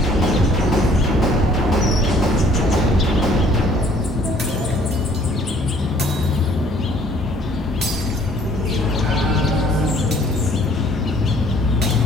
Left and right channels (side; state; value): both; normal; correlation 0.59